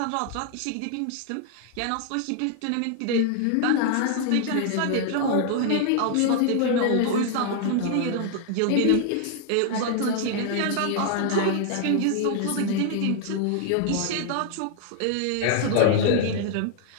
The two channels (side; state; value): both; different; correlation 0.00